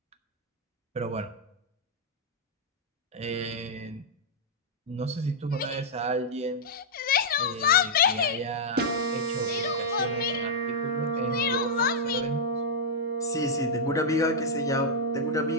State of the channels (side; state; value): both; normal; correlation -0.06